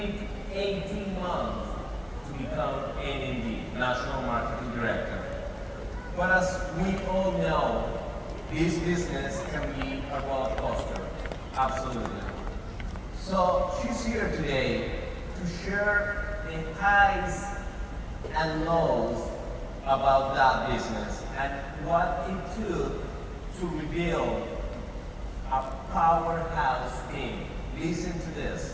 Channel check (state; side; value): identical; both; correlation 1.00